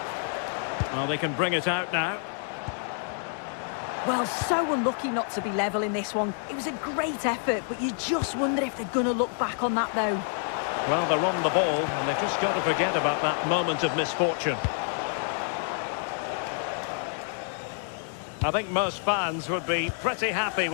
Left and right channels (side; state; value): right; silent; 59 dB below the other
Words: Well, they can bring it out now. Well, so unlucky not to be level in this one. It was a great effort, but you just wonder if they're going to look back on that, though. Well, they're on the ball, and they've just got to forget about that moment of misfortune. I think most fans would be pretty happy